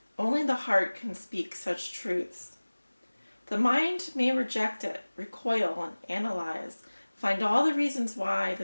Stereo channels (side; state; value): both; inverted; correlation -1.00